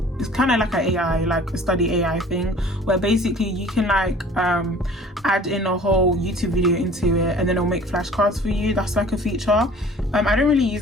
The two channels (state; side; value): normal; both; correlation 0.48